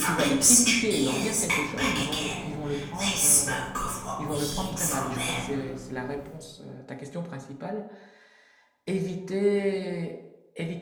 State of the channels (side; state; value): both; identical; correlation 1.00